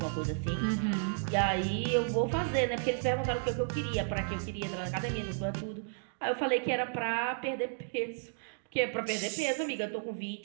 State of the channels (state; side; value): silent; left; digital silence